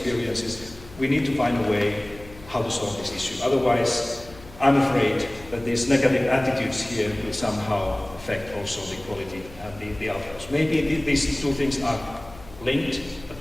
we need to find a way how to solve this issue. Otherwise, I'm afraid that these negative attitudes here will somehow affect also the quality and the outcomes. Maybe these two things are linked, but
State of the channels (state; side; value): noise; left; hum, 19 dB below the sound